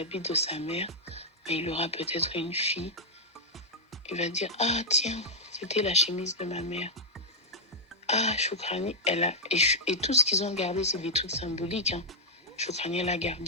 de sa mère, mais il aura peut-être une fille. Il va dire, ah tiens, c'était la chemise de ma mère. Ah, Choukrani, elle a... Et tout ce qu'ils ont gardé, c'est des trucs symboliques. Hein. Choukrani, elle a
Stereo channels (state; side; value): normal; both; correlation -0.07